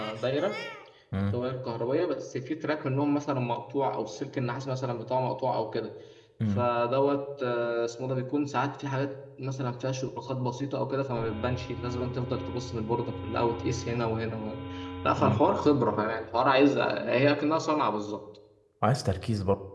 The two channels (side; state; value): both; identical; correlation 1.00